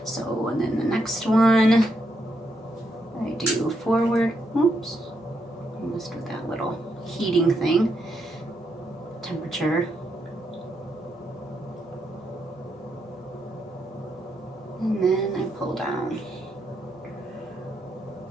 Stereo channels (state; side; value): normal; both; correlation 0.79